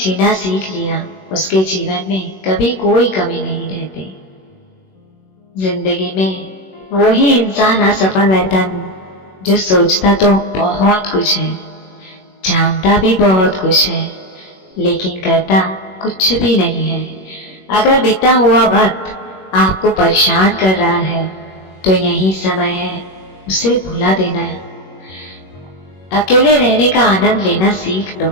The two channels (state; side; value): late; right; 21 ms